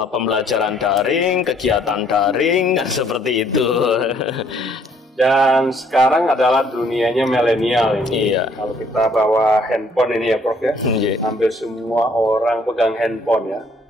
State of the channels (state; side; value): normal; both; correlation 0.63